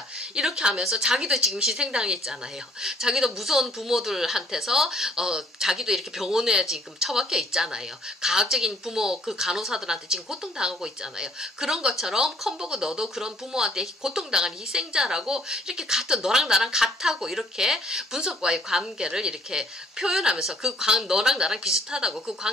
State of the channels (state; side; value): normal; both; correlation 0.61